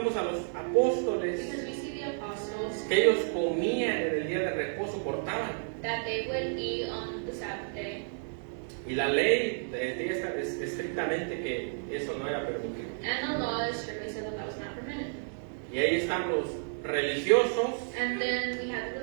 a los apóstoles because we see the apostles que ellos comían en el día de reposo, cortaban. that they would eat on the Sabbath day. Y la ley decía estrictamente que eso no era permitido. And the law strictly said that that was not permitted. Y ahí están los religiosos And then we have the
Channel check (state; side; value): silent; left; 57 dB below the other